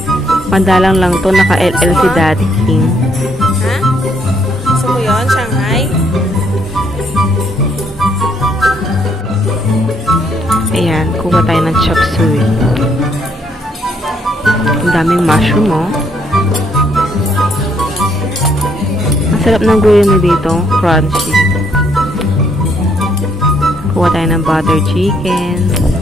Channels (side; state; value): both; normal; correlation 0.71